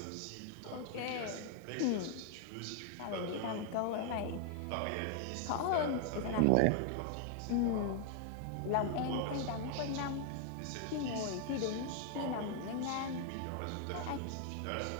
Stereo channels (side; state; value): both; different; correlation 0.00